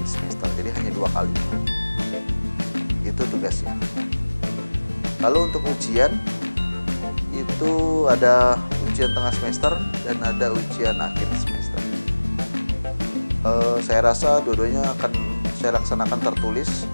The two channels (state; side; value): inverted; both; correlation -1.00